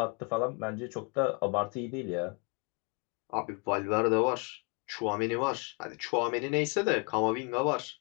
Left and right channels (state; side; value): quieter; right; 33.6 dB